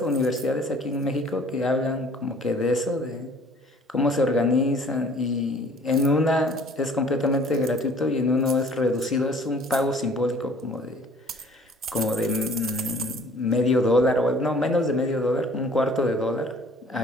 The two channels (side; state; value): both; normal; correlation 0.53